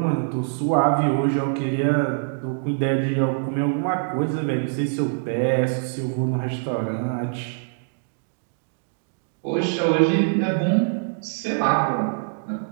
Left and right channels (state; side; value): silent; left; digital silence